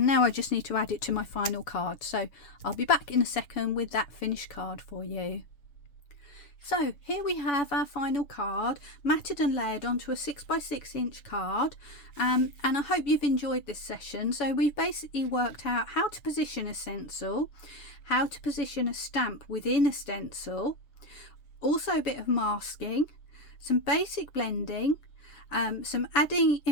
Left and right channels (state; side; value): late; right; 7.0 ms